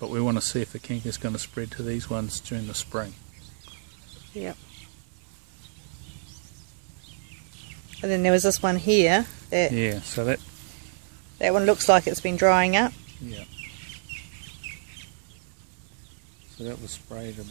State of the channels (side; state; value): left; silent; digital silence